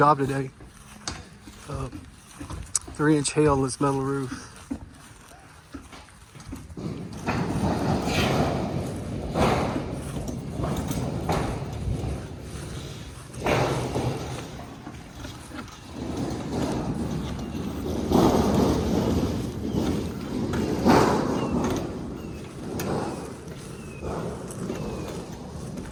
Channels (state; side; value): identical; both; correlation 1.00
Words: today. 3-inch hail on this metal roof.